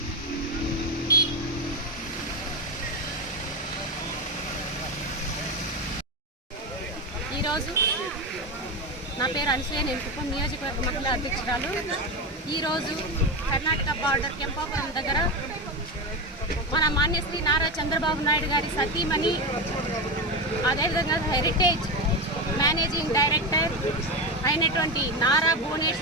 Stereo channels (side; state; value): both; normal; correlation 0.16